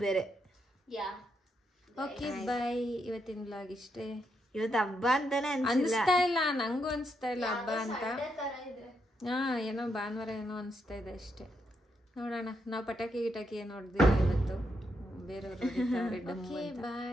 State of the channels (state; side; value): normal; both; correlation 0.81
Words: ಬೇರೆ. Okay bye. ಇವತ್ತಿನ ಬ್ಲಾಗ್ ಇಷ್ಟೇ. ಇವತ್ತು ಹಬ್ಬ ಅಂತಾನೆ ಅನ್ಸ್ತಾ ಇಲ್ಲ, ನಂಗೂ ಅನ್ಸ್ತಾ ಇಲ್ಲ ಹಬ್ಬ ಅಂತ. ಏನೋ ಭಾನುವಾರ ಏನೋ ಅನ್ಸ್ತಾ ಇದೆ ಅಷ್ಟೇ. ನೋಡೋಣ. ನಾವು ಪಟಾಕಿ ಗಿಟಾಕಿ ಏನು ಹೊಡೆದಿಲ್ಲ ಇವತ್ತು, ಬೇರೆಯವರು